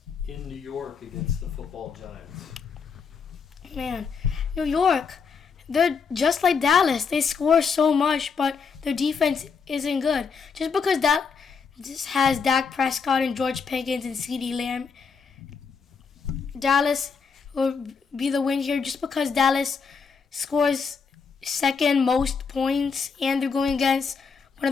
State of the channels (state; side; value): quieter; right; 5.6 dB